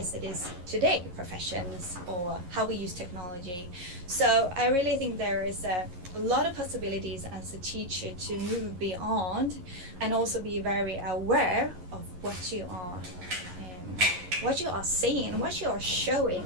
it is today, professions or how we use technology. So I really think there is a lot of possibilities as a teacher to move beyond, and also be very aware of what you are saying, what you are showing.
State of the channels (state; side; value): late; left; 11 ms